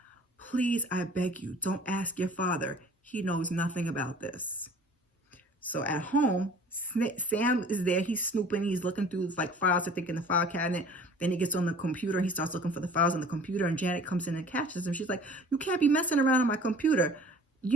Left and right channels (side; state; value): both; normal; correlation 0.48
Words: Please, I beg you, don't ask your father. He knows nothing about this. So at home, Sam is there. He's snooping. He's looking through files, I think, in the file cabinet. Then he gets on the computer. He starts looking for the files on the computer. And Janet comes in and catches him. She's like, you can't be messing around on my computer.